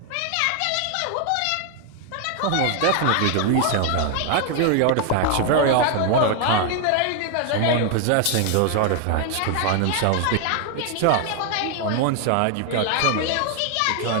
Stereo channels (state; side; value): different; both; correlation 0.00